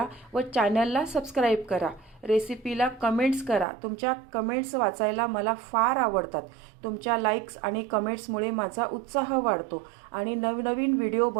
व चॅनलला सबस्क्राईब करा. रेसिपीला कमेंट्स करा. तुमच्या कमेंट्स वाचायला मला फार आवडतात. तुमच्या लाईक्स आणि कमेंट्समुळे माझा उत्साह वाढतो आणि नवनवीन व्हिडिओ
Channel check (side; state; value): left; drops out; at 3.7 s